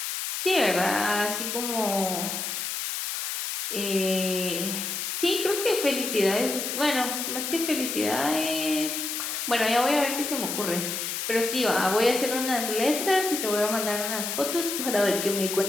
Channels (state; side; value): noise; left; hiss, 3 dB below the sound